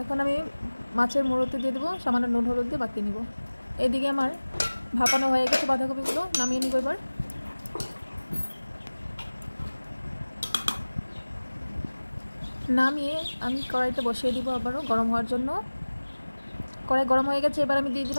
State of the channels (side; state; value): both; inverted; correlation -1.00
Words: এখন আমি মাছের মুড়োতে দিয়ে দেবো সামান্য নুন হলুদ দিয়ে বাকি নিব। এদিকে আমার ভাপানো হয়ে গেছে বাঁধাকপিগুলো, নামিয়ে নিব। এবার নামিয়ে আমি কড়াইতে বসিয়ে দিব আবারও গরম হওয়ার জন্য। কড়াই গরম হয়ে গেছে, এবার আমি দিয়ে